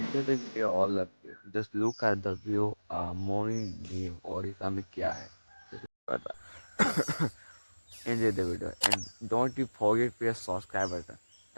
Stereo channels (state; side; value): inverted; both; correlation -1.00